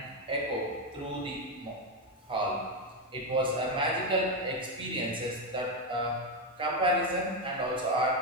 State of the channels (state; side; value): normal; both; correlation 0.08